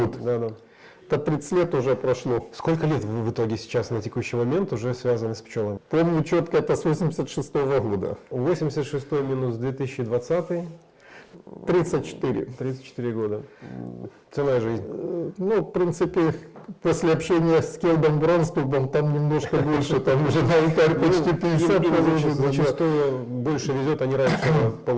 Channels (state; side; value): identical; both; correlation 1.00